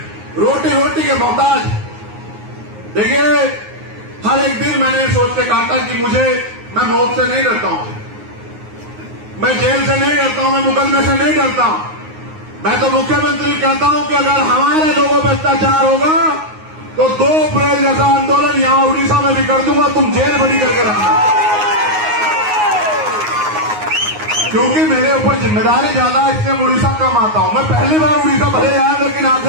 रोटी के मोहताज। देखिए, हर एक दिन मैंने सोच के काटा कि मैं मौत से नहीं डरता हूं, मैं जेल से नहीं डरता हूं, मैं मुकदमे से नहीं डरता हूं। मैं तो मुख्यमंत्री कहता हूं कि अगर हमारे लोगों पर अत्याचार होगा तो 2 अप्रैल जैसा आंदोलन यहां उड़ीसा में भी कर दूंगा, तुम जेल बंदी करके रखना। क्योंकि मेरे ऊपर जिम्मेदारी ज्यादा है, इसलिए उड़ीसा कम आता हूं। मैं पहली बार उड़ीसा भले आया, लेकिन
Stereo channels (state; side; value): late; left; 9.5 ms